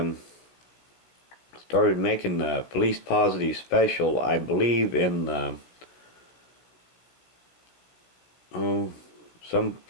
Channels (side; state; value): right; late; 16 ms